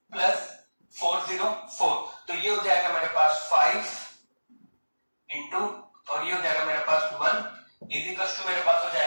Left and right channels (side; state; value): both; inverted; correlation -1.00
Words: + 404। तो ये हो जाएगा मेरे पास 5 इंटू, और ये हो जाएगा मेरे पास 1 इज इक्वल टू मेरे पास हो